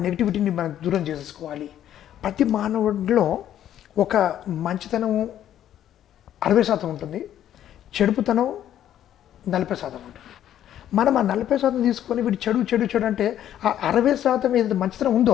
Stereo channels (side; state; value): right; quieter; 11.2 dB